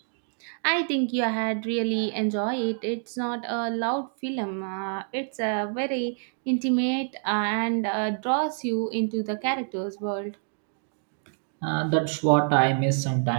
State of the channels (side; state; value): left; silent; 60 dB below the other